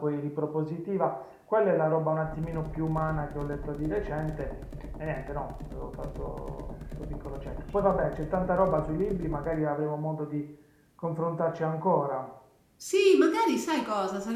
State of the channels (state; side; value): identical; both; correlation 1.00